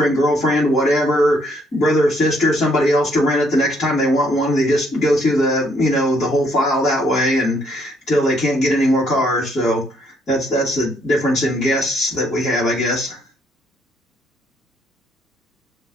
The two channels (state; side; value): normal; both; correlation 0.69